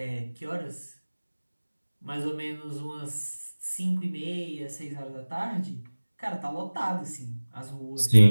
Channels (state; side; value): inverted; both; correlation -1.00